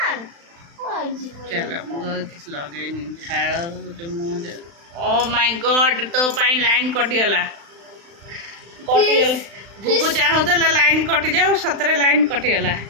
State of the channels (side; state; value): left; late; 35 ms